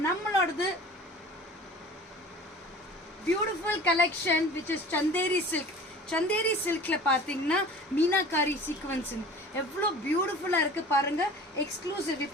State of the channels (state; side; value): normal; both; correlation 0.42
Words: நம்மளோடது beautiful collection which is Chanderi silk. Chanderi சில்க்ல பாத்தீங்கன்னா மீனாகாரி சீக்வன்ஸ் எவ்வளோ பியூட்டிஃபுல்லா இருக்கு பாருங்க. எக்ஸ்க்ளூசிவ்.